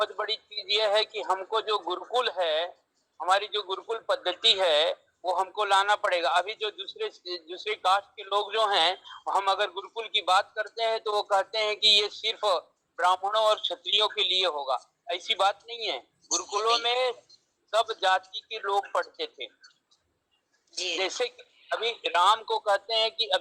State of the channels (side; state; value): both; identical; correlation 1.00